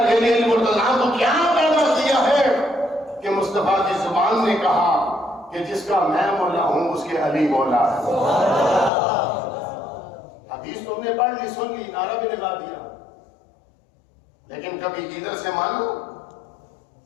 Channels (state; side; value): drops out; right; at 8.9 s